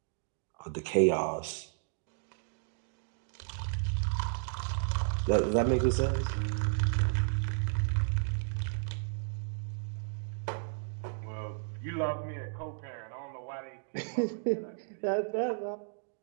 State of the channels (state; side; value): silent; left; digital silence